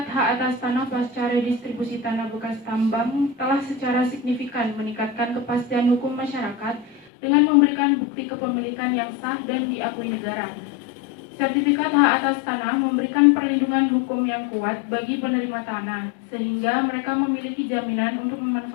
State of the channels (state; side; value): drops out; right; at 7.1 s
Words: hak atas tanah pasca redistribusi tanah bekas tambang telah secara signifikan meningkatkan kepastian hukum masyarakat dengan memberikan bukti kepemilikan yang sah dan diakui negara. Sertifikat hak atas tanah memberikan perlindungan hukum yang kuat bagi penerima tanah, sehingga mereka memiliki jaminan untuk